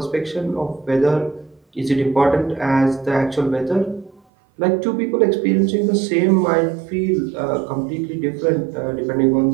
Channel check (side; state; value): left; drops out; at 4.2 s